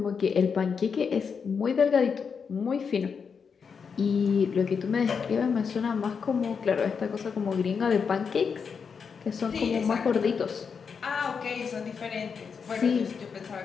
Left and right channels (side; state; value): right; quieter; 6.1 dB